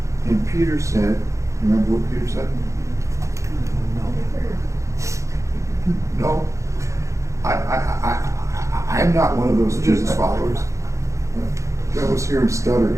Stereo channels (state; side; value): late; left; 0.15 ms